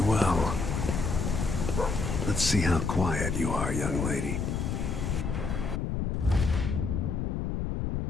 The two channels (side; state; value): left; noise; rumble, 1 dB below the sound